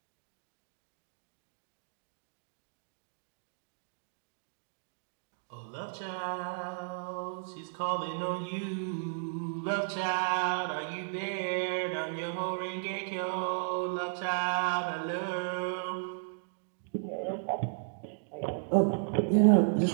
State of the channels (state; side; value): silent; left; digital silence